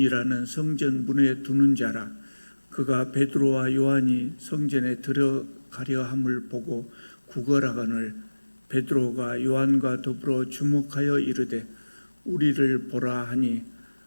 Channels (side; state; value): both; inverted; correlation -1.00